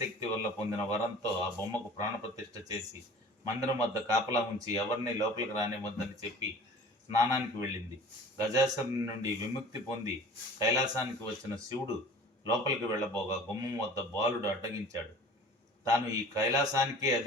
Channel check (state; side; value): normal; both; correlation 0.43